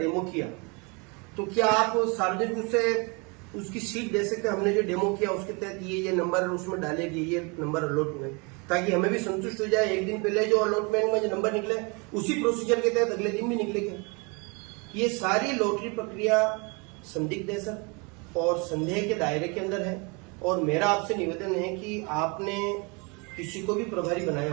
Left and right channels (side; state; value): left; quieter; 30.6 dB